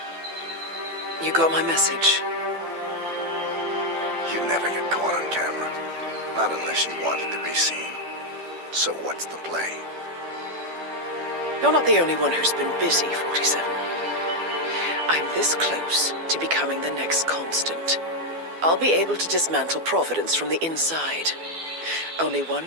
You got my message. You'd never get caught on camera. Not unless you wanted to be seen. So what's the play? You're not the only one who's been busy, 47. I'm this close to becoming the next Constant. I'll be able to dismantle Providence from the inside. Only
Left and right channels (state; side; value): late; left; 12 ms